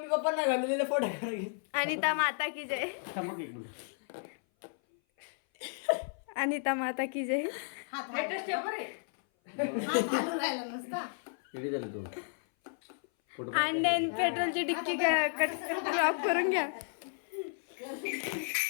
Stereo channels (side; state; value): right; silent; 56 dB below the other